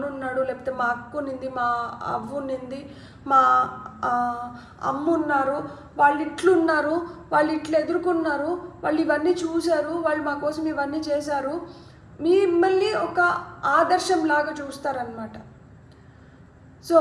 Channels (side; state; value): both; identical; correlation 1.00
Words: ఉన్నాడు, లేకపోతే మా అక్క ఉన్నింది, మా అవ్వ ఉన్నింది, మా అమ్మ ఉన్నారు, వాళ్ళు ఇట్లున్నారు, వాళ్ళు ఇట్లా ఎదుర్కొన్నారు, వాళ్ళు ఇవన్నీ చూశారు, వాళ్ళు మా కోసం ఇవన్నీ చేశారు, మిమ్మల్ని ఒక ఆదర్శంలాగా చూస్తారనమాట. సో